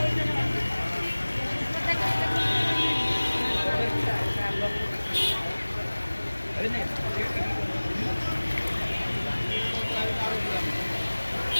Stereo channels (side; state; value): both; inverted; correlation -1.00